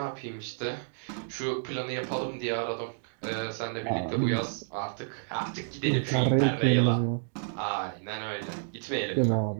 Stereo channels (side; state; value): left; silent; digital silence